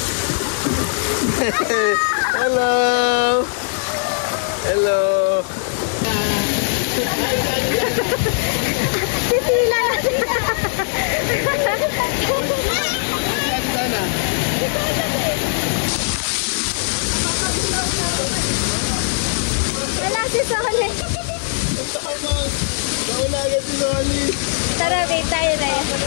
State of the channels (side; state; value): right; silent; digital silence